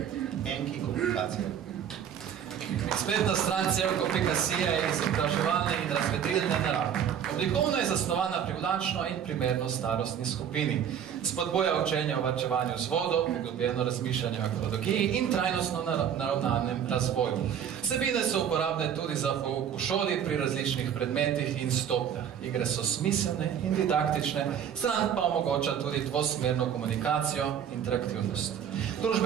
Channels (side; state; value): left; quieter; 8.8 dB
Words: Enki Komunikacija. Spletna stran Celko.si je izobraževalne in razvedrilne narave. Oblikovno je zasnovana privlačno in primerno starostni skupini. Spodboja učenje o varčevanju z vodo, poglobljeno razmišljanje o ekologiji in trajnostno naravnanem razvoju. Vsebine so uporabne tudi za pouk v šoli pri različnih predmetih in stopnjah. Igre so smiselne in didaktične, stran pa omogoča tudi dvosmerno komunikacijo, interaktivnost.